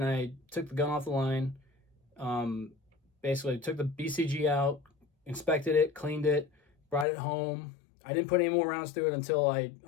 I took the gun off the line, basically took the BCG out, inspected it, cleaned it, brought it home. I didn't put any more rounds through it until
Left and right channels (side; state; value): right; drops out; at 7.1 s